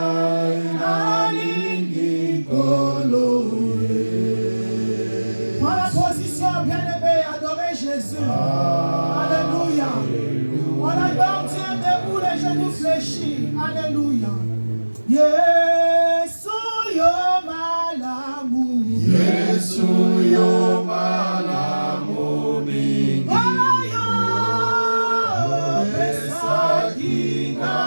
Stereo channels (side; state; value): both; inverted; correlation -1.00